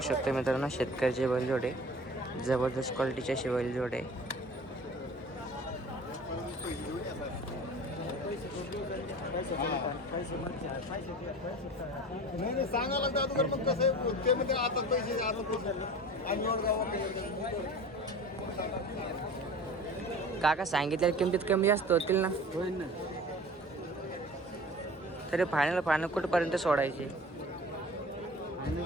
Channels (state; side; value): normal; both; correlation 0.40